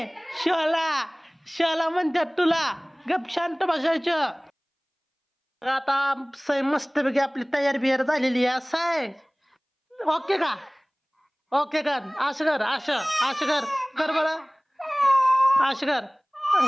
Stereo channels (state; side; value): identical; both; correlation 1.00